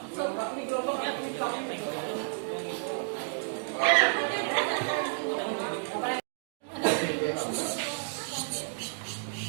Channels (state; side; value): silent; left; digital silence